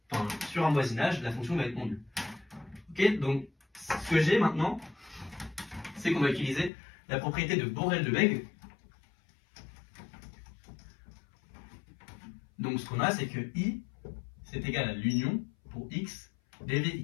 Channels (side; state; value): right; drops out; at 6.7 s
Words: Enfin, sur un voisinage, la fonction va être non nulle. Ok? Donc, ce que j'ai maintenant, c'est qu'on va utiliser la propriété de Borel-Lebesgue. Donc, ce qu'on a, c'est que I, c'est égal à l'union pour x